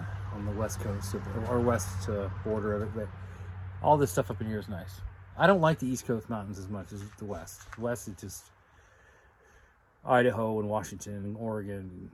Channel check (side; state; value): both; identical; correlation 1.00